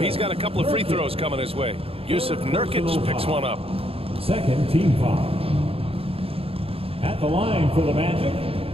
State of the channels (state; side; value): late; left; 0.28 ms